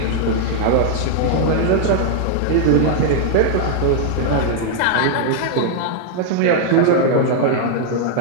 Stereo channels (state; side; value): different; both; correlation -0.01